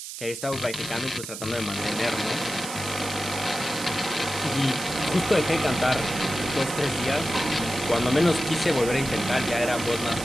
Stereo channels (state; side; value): noise; right; hiss, 9 dB below the sound